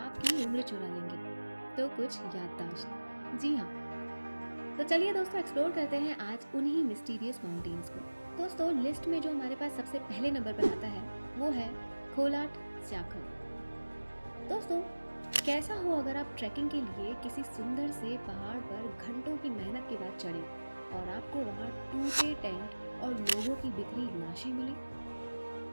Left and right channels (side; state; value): both; inverted; correlation -1.00